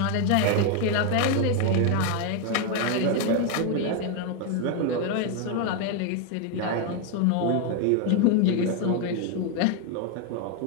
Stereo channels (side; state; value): both; different; correlation 0.01